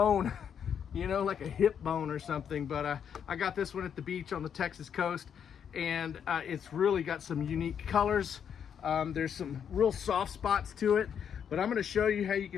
you know, like a hip bone or something. But I got this one at the beach on the Texas coast, and it's really got some unique colors. There's some real soft spots to it, but I'm going to show you how you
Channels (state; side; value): quieter; right; 8.0 dB